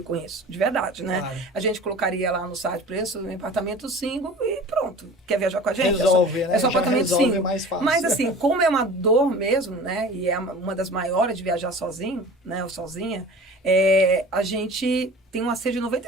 isso, de verdade, né? Claro. A gente colocaria lá no site preço em apartamento single e pronto. Quer viajar com a gente? Resolve, né? É só apartamento single. Mais fácil. Mas assim, como é uma dor mesmo, né? E é uma das maiores de viajar sozinho, né? Ou sozinha, a gente tem um acerto de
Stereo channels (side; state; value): both; normal; correlation 0.40